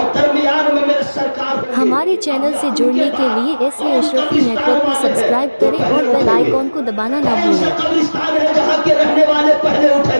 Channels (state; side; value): inverted; both; correlation -1.00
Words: दरमियान में मेरे सरकार। हमारे चैनल से जुड़ने के लिए एसए अशरफी नेटवर्क को सब्सक्राइब करें और बेल आइकॉन को दबाना ना भूलें। कब्रिस्तान है जहाँ के रहने वाले पहले